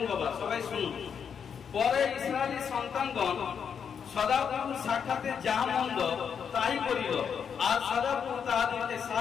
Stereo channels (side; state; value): right; quieter; 7.2 dB